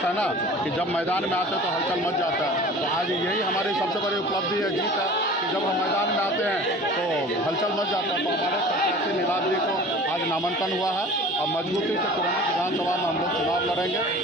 है ना कि जब मैदान में आते हैं तो हलचल मच जाता है। तो आज यही हमारी सबसे बड़ी उपलब्धि है, जीत है कि जब हम मैदान में आते हैं तो हलचल मच जाता है। तो हमारे प्रत्याशी नीलाभ जी को आज नामांकन हुआ है और मजबूती से कुरहनी विधानसभा में हम लोग चुनाव लड़ेंगे।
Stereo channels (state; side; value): normal; both; correlation 0.42